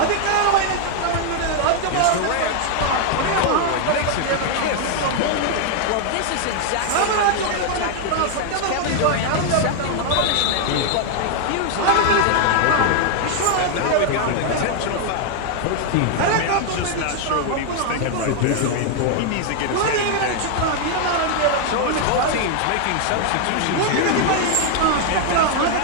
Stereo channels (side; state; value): both; different; correlation 0.00